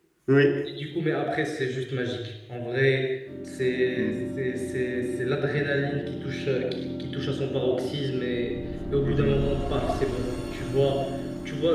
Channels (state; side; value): identical; both; correlation 1.00